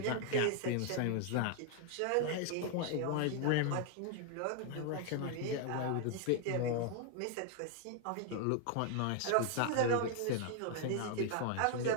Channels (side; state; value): both; different; correlation 0.00